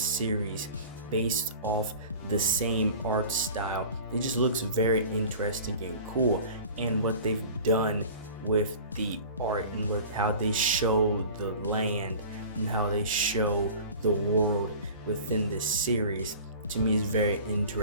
based off the same art style. It just looks very interesting and cool, and what they've done with the art and with how they show the land and how they show the world within this series, to me is very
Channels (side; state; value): both; inverted; correlation -0.40